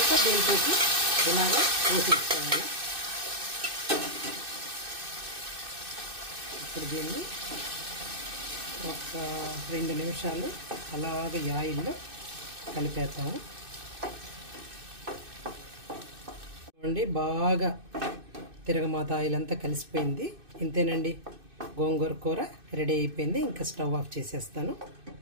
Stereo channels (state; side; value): late; left; 2.6 ms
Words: దీంతో ఇలాగా పోసేసుకోవాలి. ఇప్పుడు దీన్ని ఒక 2 నిమిషాలు అలాగే ఆయిల్లో కలిపేస్తాము. చూడండి బాగా తిరగమాత ఆయిల్ అంతా కలిసిపోయింది. ఇంతేనండి, గోంగూర కూర రెడీ అయిపోయింది. ఇంకా స్టవ్ ఆఫ్ చేసేస్తాను.